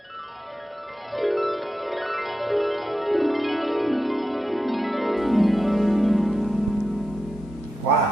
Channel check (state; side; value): normal; both; correlation 0.89